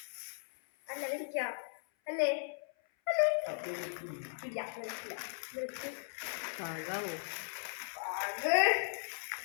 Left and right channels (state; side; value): silent; right; 53 dB below the other